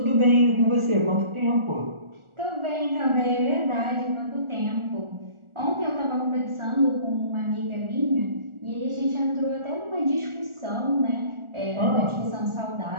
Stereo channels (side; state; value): left; late; 1.4 ms